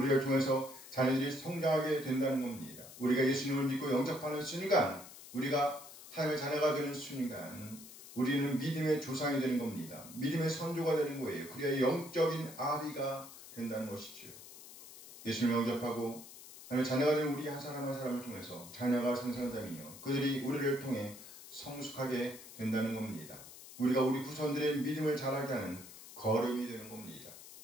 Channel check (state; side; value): noise; left; hiss, 16 dB below the sound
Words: 통해서 자녀들이 성장하게 된다는 겁니다. 우리가 예수님을 믿고 영접하는 순간, 우리가 하나님의 자녀가 되는 순간 우리는 믿음의 조상이 되는 겁니다. 믿음의 선조가 되는 거예요. 그래야 영적인 아비가 된다는 것이죠. 예수님을 영접하고 하나님의 자녀가 되는 우리 한 사람 한 사람을 통해서 자녀가 생성되며 그들이 우리를 통해 성숙하게 된다는 겁니다. 우리가 우리 후손들의 믿음을 자라게 하는 걸음이 되는 겁니다.